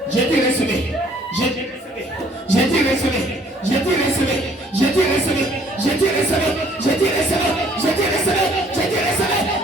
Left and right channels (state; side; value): normal; both; correlation 0.60